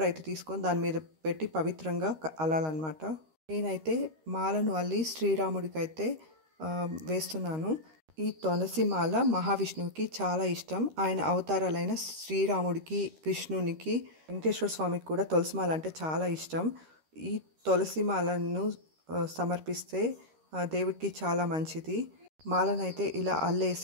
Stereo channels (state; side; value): late; left; 13 ms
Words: అయితే తీసుకొని దాని మీద పెట్టి పవిత్రంగా అల్లాలన్నమాట. నేనైతే మాలను అల్లి శ్రీరాముడికి అయితే వేస్తున్నాను. ఈ తులసి మాల మహావిష్ణువుకి చాలా ఇష్టం. ఆయన అవతారాలైన శ్రీరాముడికి, విష్ణునికి, వెంకటేశ్వర స్వామికి కూడా తులసి మాల అంటే చాలా ఇష్టం. ఈ తులసి మాలను సమర్పిస్తే దేవుడికి చాలా మంచిది. మాలనైతే ఇలా